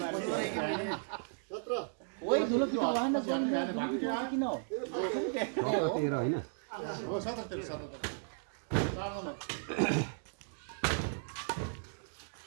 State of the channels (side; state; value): left; silent; digital silence